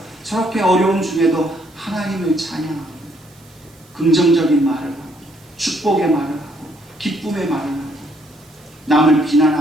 저렇게 어려움 중에도 하나님을 찬양하고 긍정적인 말을 하고 축복의 말을 하고 기쁨의 말을 하고 남을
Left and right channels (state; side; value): noise; right; hiss, 28 dB below the sound